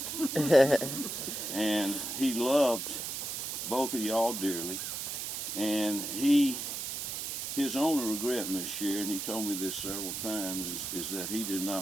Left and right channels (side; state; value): right; noise; hiss, 4 dB below the sound